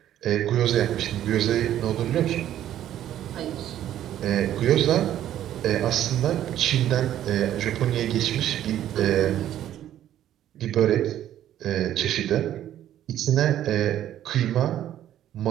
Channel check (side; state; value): left; quieter; 11.7 dB